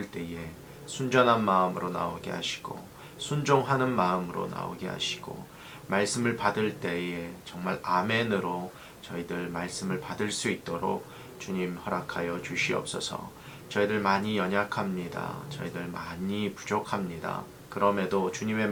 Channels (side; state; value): both; identical; correlation 1.00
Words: 때에 순전한 마음으로 나오게 하시고 순종하는 마음으로 나오게 하시고 말씀을 받을 때에 정말 아멘으로 저희들 말씀을 받을 수 있도록 주님 허락하여 주시옵소서. 저희들 많이 연약합니다. 저희들 많이 부족합니다. 그럼에도 주님의